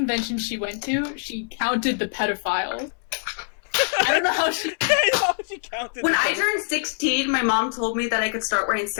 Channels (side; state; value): right; silent; digital silence